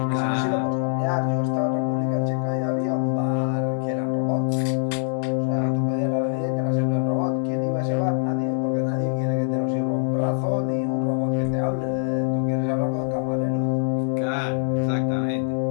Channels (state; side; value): silent; right; digital silence